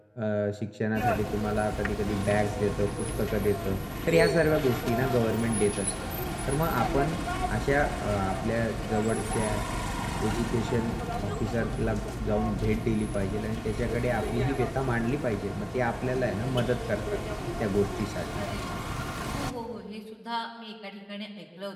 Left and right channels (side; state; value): both; identical; correlation 1.00